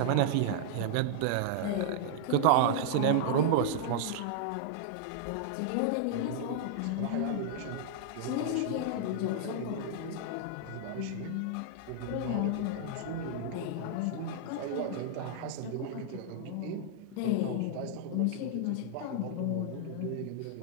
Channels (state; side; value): different; both; correlation -0.01